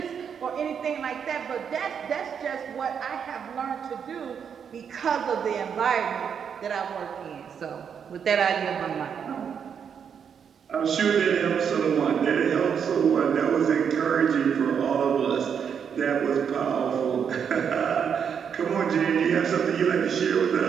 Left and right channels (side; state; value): left; quieter; 7.4 dB